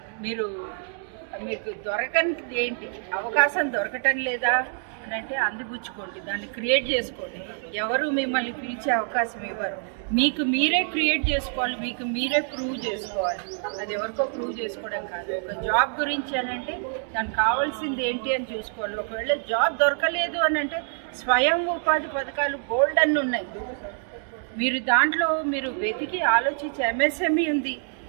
మీకు దొరకనిది ఏంటి? అవకాశం దొరకటం లేదా అని అంటే అందిపుచ్చుకోండి, దాన్ని క్రియేట్ చేసుకోండి. ఎవరు మిమ్మల్ని పిలిచే అవకాశం ఇవ్వరు. మీకు మీరే క్రియేట్ చేసుకోవాలి, మీకు మీరే ప్రూవ్ చేసుకోవాలి. అది ఎవరికో ప్రూవ్ చేసుకోవడం కాదు. ఒక జాబ్ గురించి అని అంటే దానికి కావాల్సింది ఏంటి అని చూసుకోవాలి. ఒకవేళ జాబ్ దొరకలేదు అని అంటే స్వయం ఉపాధి పథకాలు బోల్డ్ అన్ని ఉన్నాయి. మీరు దాంట్లో వెతికి ఆలోచించి, ఎంఎస్ఎంఈ ఉంది,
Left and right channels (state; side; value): silent; left; 58 dB below the other